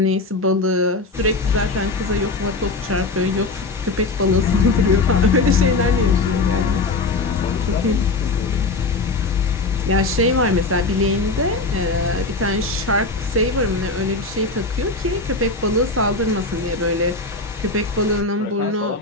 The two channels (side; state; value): right; quieter; 3.5 dB